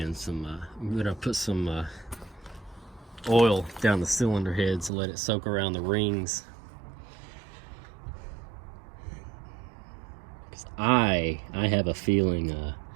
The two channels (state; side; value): drops out; left; at 4.9 s